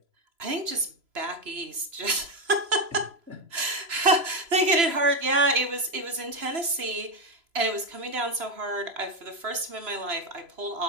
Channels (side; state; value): left; late; 3.0 ms